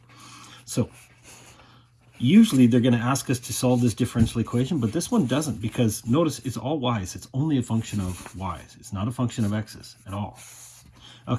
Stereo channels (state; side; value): identical; both; correlation 1.00